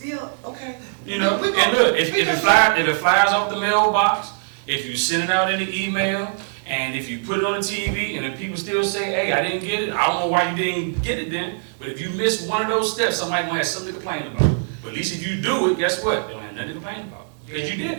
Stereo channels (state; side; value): silent; left; digital silence